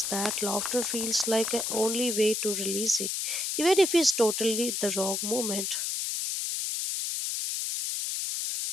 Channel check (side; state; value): left; noise; hiss, 1 dB below the sound